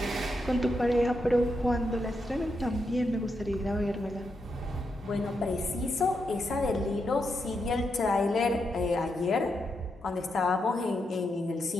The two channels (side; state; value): both; normal; correlation 0.83